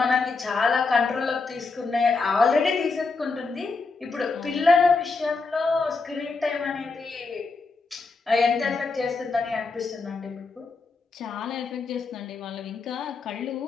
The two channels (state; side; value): quieter; right; 4.1 dB